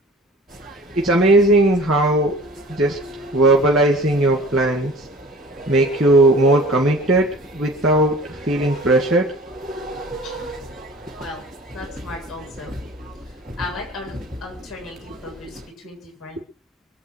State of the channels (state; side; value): normal; both; correlation 0.45